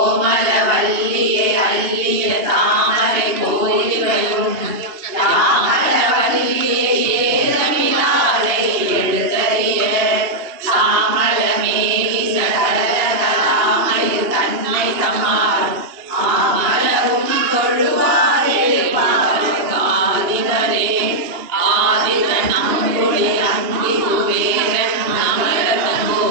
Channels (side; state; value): left; late; 2.8 ms